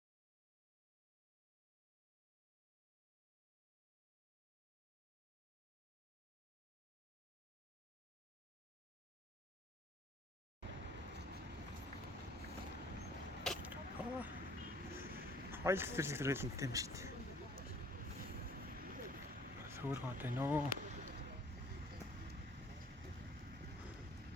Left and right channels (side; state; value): both; normal; correlation 0.54